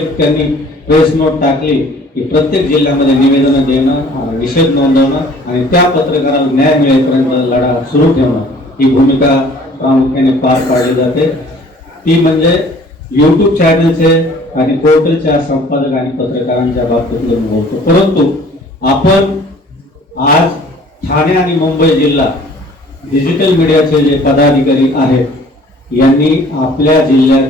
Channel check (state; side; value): normal; both; correlation 0.52